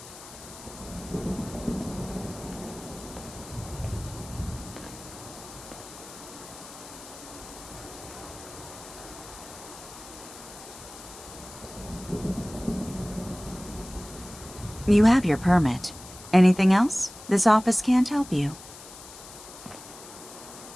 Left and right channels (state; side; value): noise; left; hiss, 16 dB below the sound